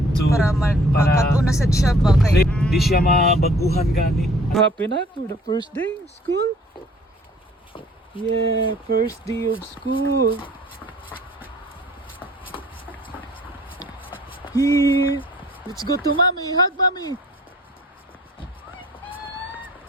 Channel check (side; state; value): both; normal; correlation 0.55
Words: So, para makatuna sa siya ba kay di siya mabaguhan gani. Happy na for the first day of school. Yeah, first day of school. Here, let's go to mommy. Hug mommy.